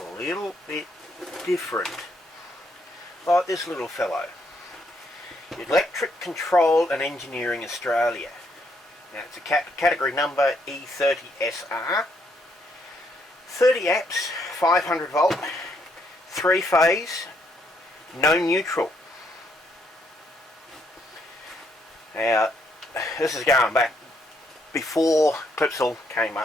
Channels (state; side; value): normal; both; correlation 0.73